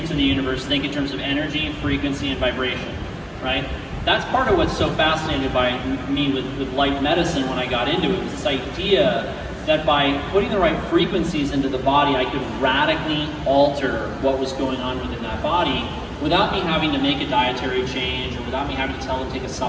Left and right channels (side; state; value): both; identical; correlation 1.00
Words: of the universe, think in terms of energy, frequency, and vibration, right? That's part of what's so fascinated by me with light medicine when I got into it, was this idea that by putting the right frequencies into the body, I could radically alter what was going on within that body without me having to make a dietary change or without me having to tell them to take a